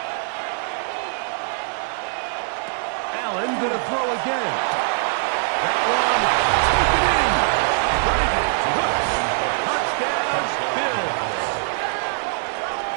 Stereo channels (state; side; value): silent; left; 60 dB below the other